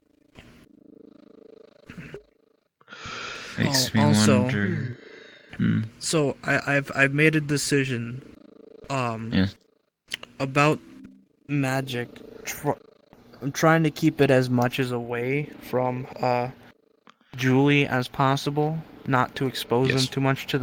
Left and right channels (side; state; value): both; identical; correlation 1.00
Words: Makes me also, wonder. So I've made a decision. Yeah. About magic. I'm trying to keep it as much as away from Julie as possible, not to expose them too much to